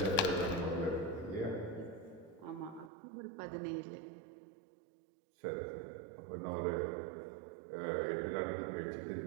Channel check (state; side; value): drops out; left; at 2.9 s